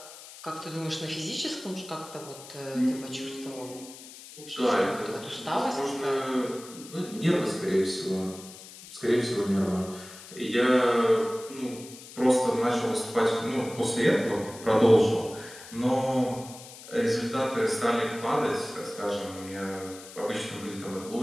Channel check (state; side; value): noise; left; hiss, 16 dB below the sound